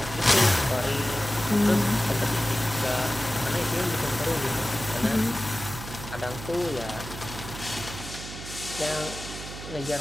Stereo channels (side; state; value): right; noise; hum, 11 dB below the sound